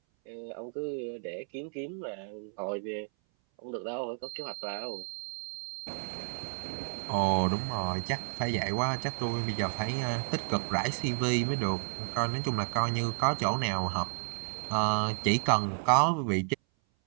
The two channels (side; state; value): left; silent; 57 dB below the other